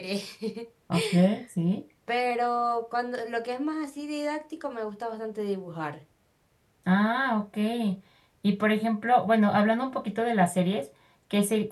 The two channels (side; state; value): both; identical; correlation 1.00